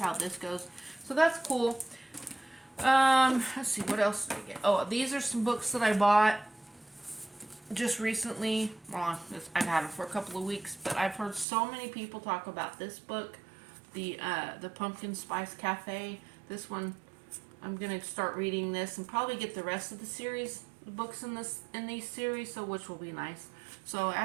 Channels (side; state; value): left; drops out; at 11.5 s